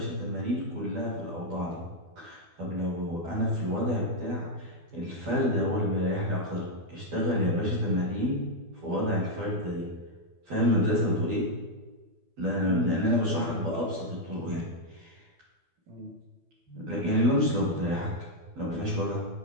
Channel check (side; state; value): left; late; 12 ms